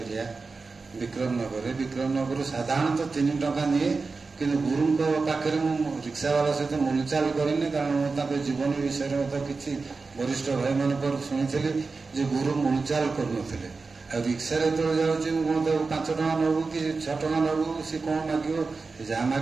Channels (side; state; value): left; quieter; 4.2 dB